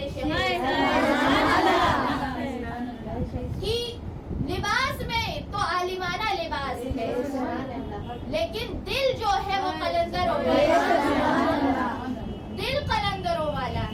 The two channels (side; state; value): both; identical; correlation 1.00